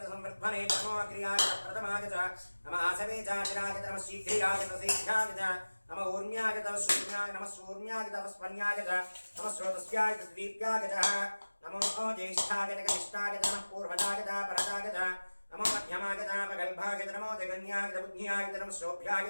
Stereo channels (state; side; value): inverted; both; correlation -1.00